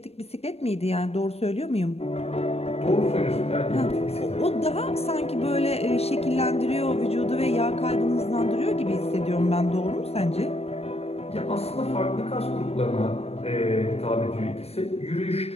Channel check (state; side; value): late; right; 0.30 ms